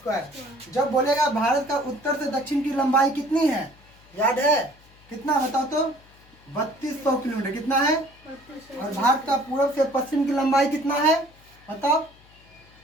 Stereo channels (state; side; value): noise; left; hum, 27 dB below the sound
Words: जब बोलेगा भारत का उत्तर से दक्षिण की लंबाई कितनी है, याद है कितना, बताओ तो? 3200 किलोमीटर। कितना है? और भारत का पूर्व से पश्चिम की लंबाई कितना है, बताओ?